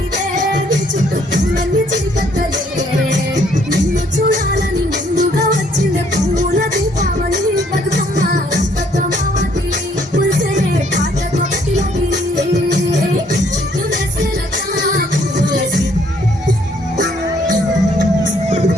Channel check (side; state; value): both; normal; correlation 0.65